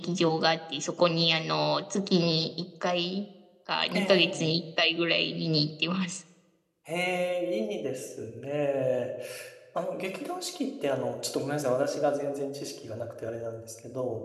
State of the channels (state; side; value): identical; both; correlation 1.00